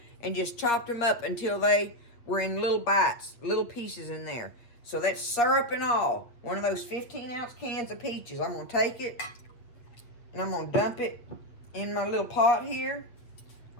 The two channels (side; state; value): right; late; 8.2 ms